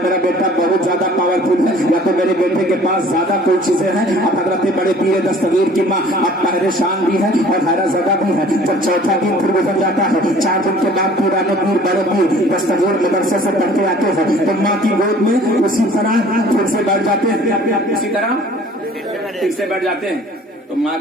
मेरा बेटा बहुत ज्यादा पावरफुल है, या तो मेरे बेटे के पास ज्यादा कोई चीजें हैं। अब हजरत बड़े पीर दस्तगीर की माँ अब परेशान भी है और हैरत ज़दा भी है। जब चौथा दिन फिर गुजर जाता है, 4 दिन के बाद पुराने पीर बड़े पीर दस्तगीर मदरसे से पढ़ के आते हैं, तो माँ की गोद में उसी तरह फिर से बैठ जाते हैं, उसी तरह फिर से बैठ जाते हैं। तो माँ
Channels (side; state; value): both; normal; correlation 0.51